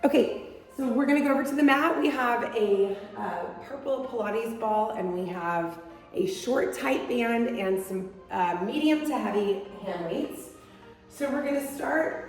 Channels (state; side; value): identical; both; correlation 1.00